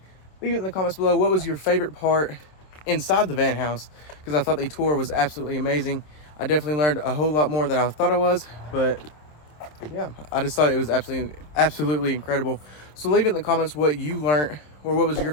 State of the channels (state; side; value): late; right; 27 ms